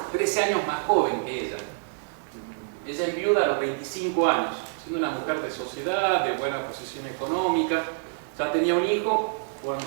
13 años más joven que ella. Ella es viuda a los 25 años, siendo una mujer de sociedad, de buena posición económica. Ya tenía un hijo.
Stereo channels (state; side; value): silent; left; digital silence